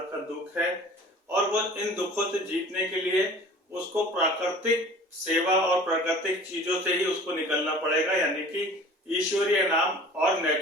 का दुख है, और वो इन दुखों से जीतने के लिए उसको प्राकृतिक सेवा और प्राकृतिक चीजों से ही उसको निकलना पड़ेगा, यानी कि ईश्वरीय नाम और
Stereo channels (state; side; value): normal; both; correlation 0.44